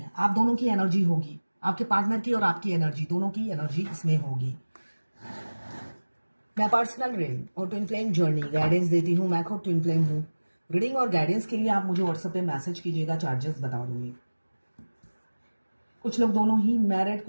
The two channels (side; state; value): both; inverted; correlation -1.00